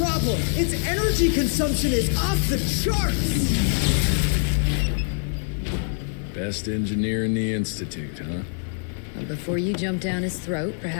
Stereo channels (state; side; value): silent; right; digital silence